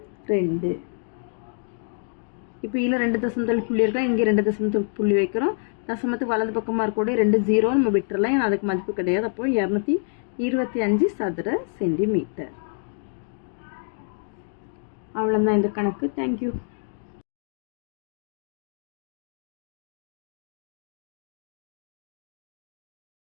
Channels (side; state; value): right; silent; 61 dB below the other